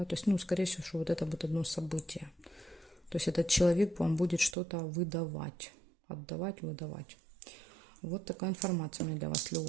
то есть, скорее всего, что вот это будет одно событие. То есть этот человек вам будет что-то выдавать, отдавать, выдавать. Вот такая информация у меня для вас,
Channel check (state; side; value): drops out; left; at 4.5 s